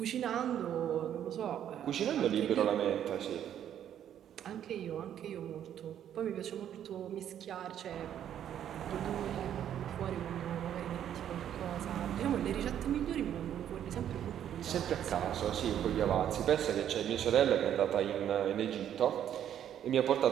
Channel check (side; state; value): left; quieter; 10.2 dB